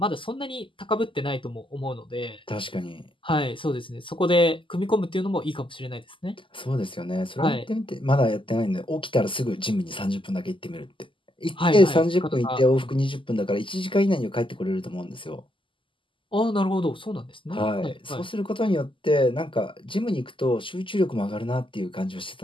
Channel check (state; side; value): late; right; 0.25 ms